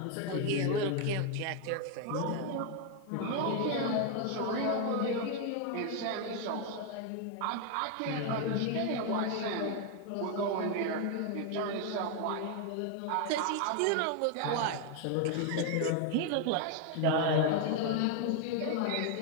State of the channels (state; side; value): different; both; correlation 0.01